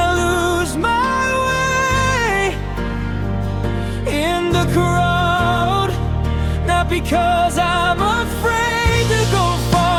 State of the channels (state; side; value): identical; both; correlation 1.00